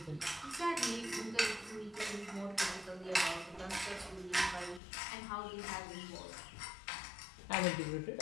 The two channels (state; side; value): drops out; right; at 4.8 s